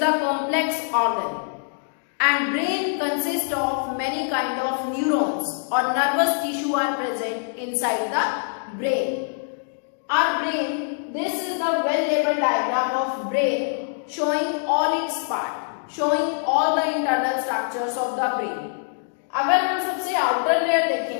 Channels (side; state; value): right; silent; digital silence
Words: complex organ. And brain consists of many kind of neurons or nervous tissue are present inside the brain. Our brain, this is the well-labeled diagram of brain showing all its part, showing all the internal structures of the brain. अगर हम सबसे outer layer